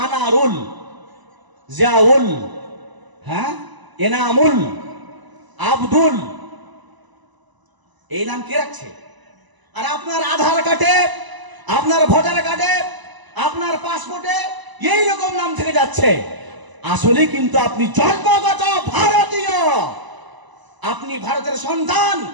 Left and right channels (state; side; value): late; left; 1.0 ms